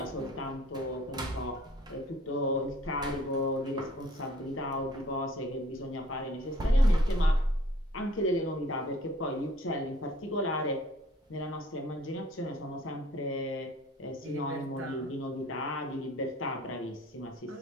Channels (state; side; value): normal; both; correlation 0.54